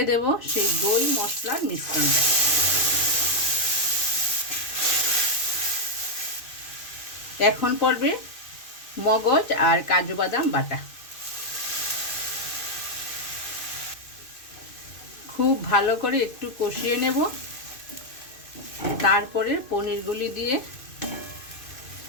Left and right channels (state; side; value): late; right; 2.5 ms